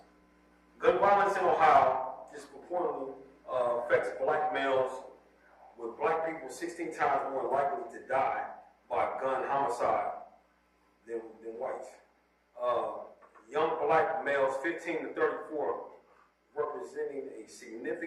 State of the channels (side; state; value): both; identical; correlation 1.00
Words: Gun violence in Ohio disproportionately affects black males, with black people 16 times more likely to die by gun homicide than whites. Young black males 15 to 34 representing a